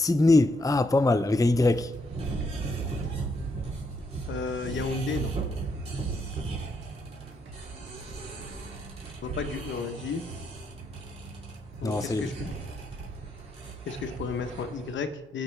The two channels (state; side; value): normal; both; correlation 0.77